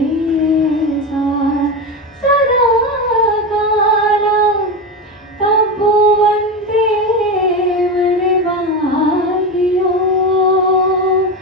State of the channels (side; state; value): both; normal; correlation 0.18